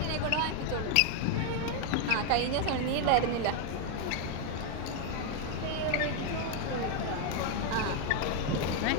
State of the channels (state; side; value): different; both; correlation 0.01